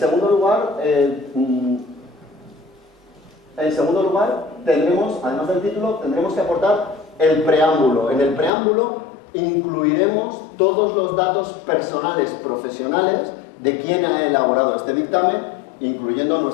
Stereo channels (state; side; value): drops out; right; at 8.5 s